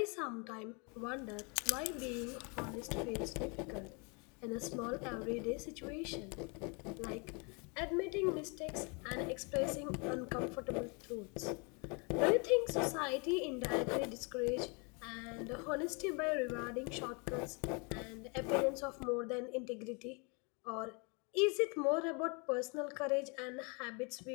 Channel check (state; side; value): quieter; right; 32.7 dB